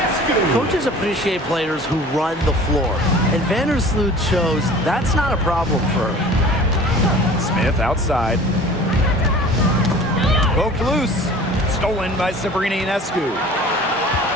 Coaches appreciate players who run the floor. And Vandersloot shows that's not a problem for her. Smith outside. Poked loose. Stolen by Sabrina Ionescu.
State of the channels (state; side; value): normal; both; correlation 0.44